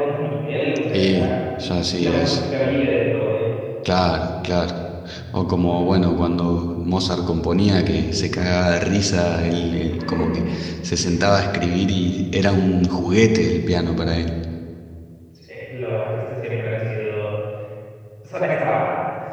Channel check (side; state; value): both; identical; correlation 1.00